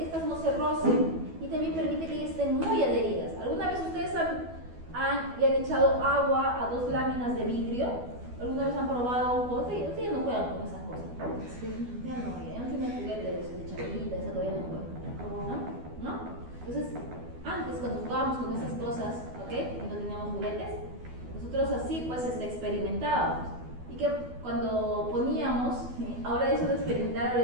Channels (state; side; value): late; left; 12 ms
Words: estas no se rocen y también permite que ellas estén muy adheridas. ¿Alguna vez ustedes le han echado agua a dos láminas de vidrio? ¿Alguna vez han probado un juego? Ustedes ya no juegan con esas cosas. Sí. Ya no tienen juguetes de chavalita, esa todavía no juegan. ¿No? Entonces, antes cuando jugábamos con esas cosas, ¿ok? Y no teníamos juguetes, nosotros así pues experimentábamos. Y que cuando poníamos, ahora eso de experimentar